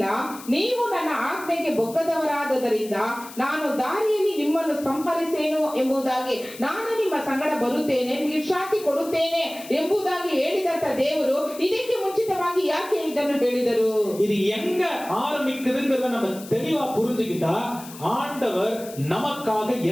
ನೀವು ನನ್ನ ಆಜ್ಞೆಗೆ ಬೊಕ್ಕದವರಾದದರಿಂದ ನಾನು ದಾರಿಯಲ್ಲಿ ನಿಮ್ಮನ್ನು ಸಂಹರಿಸೇನು ಎಂಬುದಾಗಿ, ನಾನು ನಿಮ್ಮ ಸಂಗಡ ಬರುತ್ತೇನೆ, ವಿಶ್ರಾಂತಿ ಕೊಡುತ್ತೇನೆ ಎಂಬುದಾಗಿ ಹೇಳಿದಂತ ದೇವರು ಇದಕ್ಕೆ ಮುಂಚಿತವಾಗಿ ಯಾಕೆ ಇದನ್ನು ಹೇಳಿದರು? இது எங்க ஆரம்பிக்குதுங்கிறத நம்ம தெளிவா புரிஞ்சுக்கிட்டா ஆண்டவர் நமக்காக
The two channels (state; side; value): noise; left; hiss, 16 dB below the sound